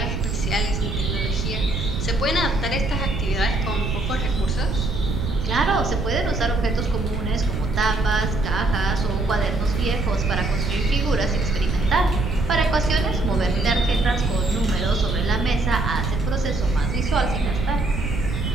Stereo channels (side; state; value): right; noise; rumble, 2 dB below the sound